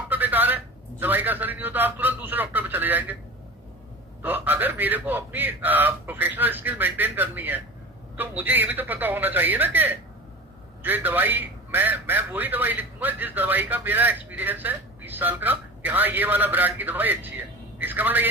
बेकार है, दवाई का असर ही नहीं होता, आप तुरंत दूसरे डॉक्टर पे चले जाएंगे। तो अगर मेरे को अपनी प्रोफेशनल स्किल मेंटेन करनी है, तो मुझे ये भी तो पता होना चाहिए ना कि जो दवाई मैं वही दवाई लिखूंगा जिस दवाई का मेरा एक्सपीरियंस है 20 साल का, कि हाँ ये वाला ब्रांड की दवाई अच्छी है। इसका मतलब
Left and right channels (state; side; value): normal; both; correlation 0.34